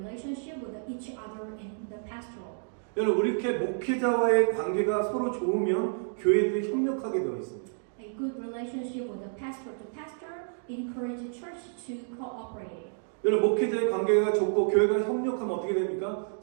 with each other in the pastoral. 여러분 이렇게 목회자와의 관계가 서로 좋으면 교회들이 협력하게 되어 있습니다. A good relationship with the pastor to pastor encourages church to cooperate. 여러분 목회자의 관계가 좋고 교회가 협력하면 어떻게 됩니까?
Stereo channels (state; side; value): silent; left; digital silence